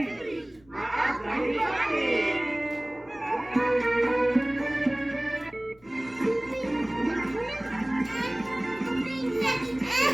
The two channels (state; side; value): noise; left; rumble, 30 dB below the sound